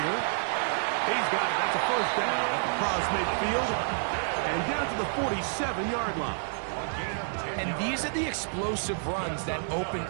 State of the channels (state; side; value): silent; left; digital silence